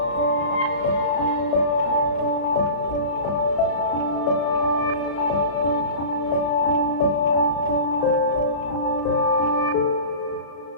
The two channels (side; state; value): right; late; 35 ms